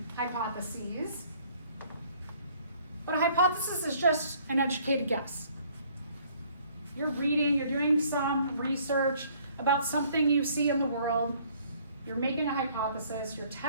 hypotheses, but a hypothesis is just an educated guess. You're reading, you're doing some research about something you see in the world, you're making a hypothesis, you're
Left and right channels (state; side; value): inverted; both; correlation -0.60